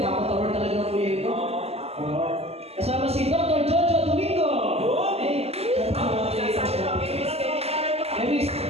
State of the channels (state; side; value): late; left; 0.29 ms